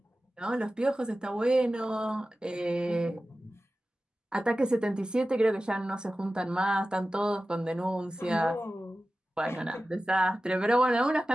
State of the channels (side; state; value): both; normal; correlation 0.94